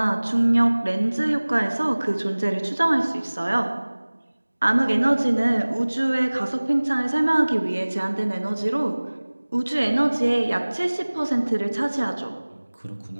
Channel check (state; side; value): inverted; both; correlation -1.00